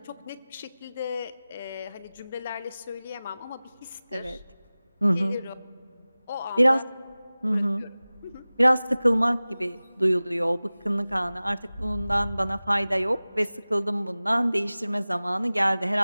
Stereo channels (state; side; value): inverted; both; correlation -0.98